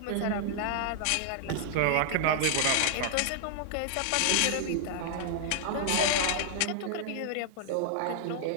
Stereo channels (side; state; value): both; different; correlation -0.01